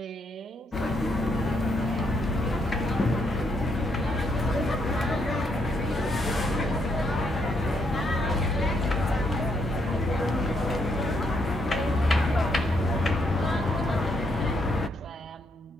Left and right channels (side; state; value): both; normal; correlation 0.75